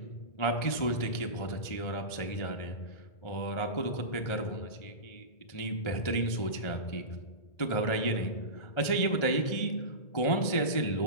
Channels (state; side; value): late; right; 1.4 ms